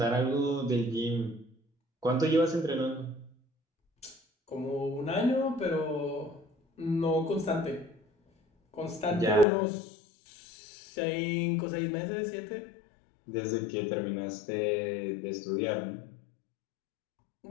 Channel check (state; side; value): drops out; right; at 9.5 s